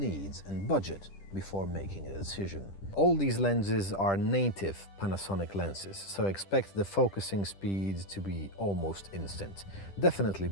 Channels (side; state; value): right; late; 10 ms